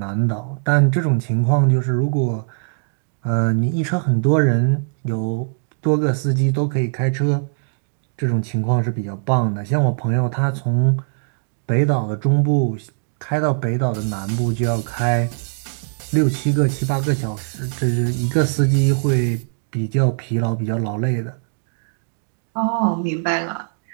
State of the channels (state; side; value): silent; left; digital silence